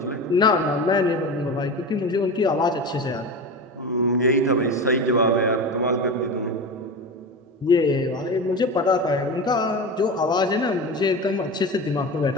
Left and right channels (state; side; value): normal; both; correlation 0.26